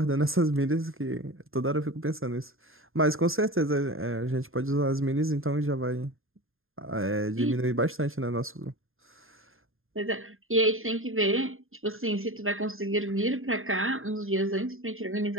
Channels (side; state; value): left; late; 0.60 ms